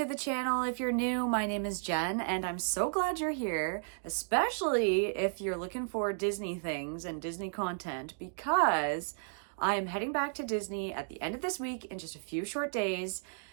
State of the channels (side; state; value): left; silent; digital silence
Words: the channel. If you're new, my name is Jen and I'm so glad you're here, especially if you're looking for Disney things and Disney content, because I'm heading back to Disney at the end of this week in just a few short days,